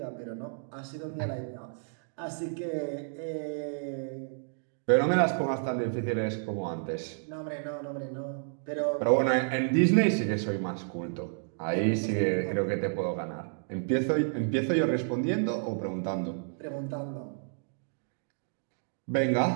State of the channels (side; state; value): left; silent; digital silence